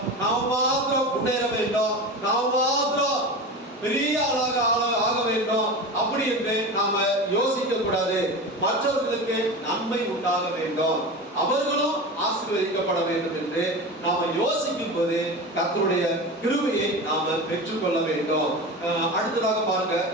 நாம மாத்திரம் முன்னேற வேண்டும், நாம மாத்திரம் பெரிய ஆளாக ஆக வேண்டும் அப்படி என்று நாம யோசிக்க கூடாது. மற்றவர்களுக்கு நன்மை உண்டாக வேண்டும், அவர்களும் ஆசீர்வதிக்கப்பட வேண்டும் என்று நாம யோசிக்கும் போது கர்த்தருடைய கிருபையை நாம பெற்றுக்கொள்ள வேண்டும். அடுத்ததாக பாருங்க,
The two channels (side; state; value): both; normal; correlation 0.28